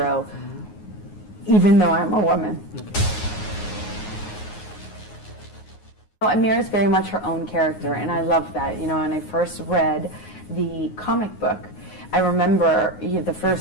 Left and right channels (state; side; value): late; right; 9.5 ms